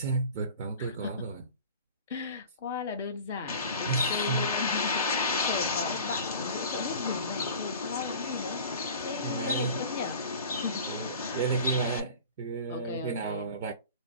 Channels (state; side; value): inverted; both; correlation -0.39